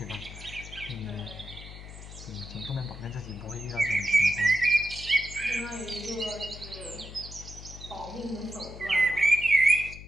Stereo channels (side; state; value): left; noise; hum, 14 dB below the sound